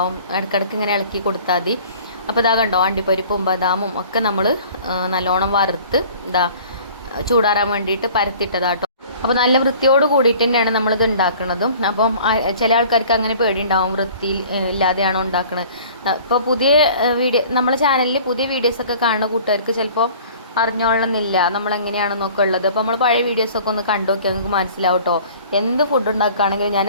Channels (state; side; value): inverted; both; correlation -0.48